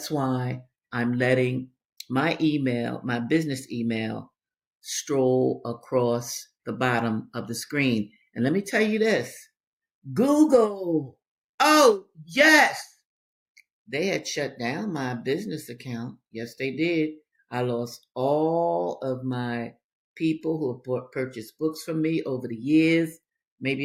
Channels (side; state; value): both; identical; correlation 1.00